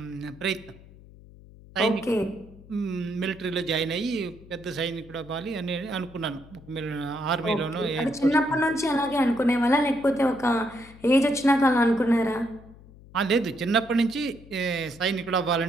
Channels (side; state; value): left; noise; hum, 21 dB below the sound